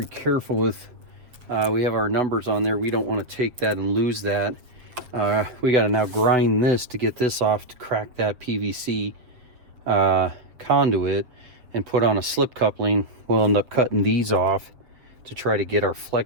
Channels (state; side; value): late; left; 7.3 ms